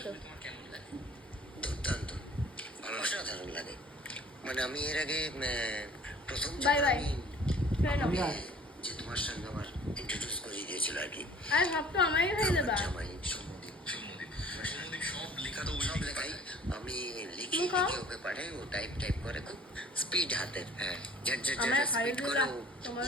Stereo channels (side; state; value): both; normal; correlation 0.50